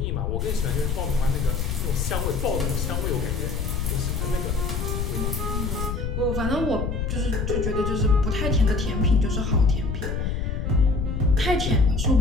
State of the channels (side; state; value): left; noise; rumble, 1 dB below the sound